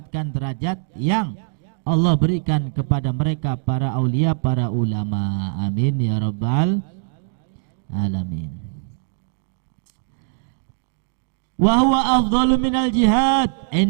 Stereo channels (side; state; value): left; silent; digital silence